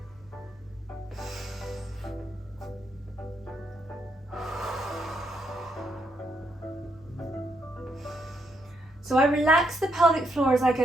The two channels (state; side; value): normal; both; correlation 0.77